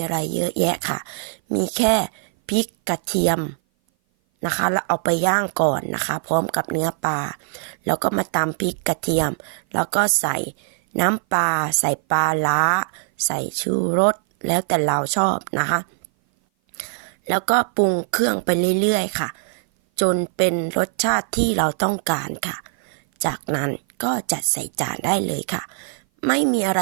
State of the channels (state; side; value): silent; left; 58 dB below the other